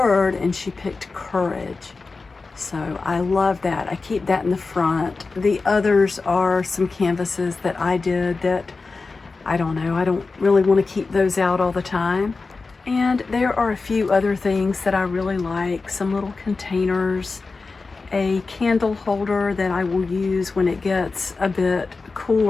and she picked courage. So I love that. I keep that in the front. The others are some canvases that I did that I don't know, I don't really want to keep those out all the time. And there are a few other things that I really like, some little containers, a candle holder that I will use when it gets a bit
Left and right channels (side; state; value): right; quieter; 4.0 dB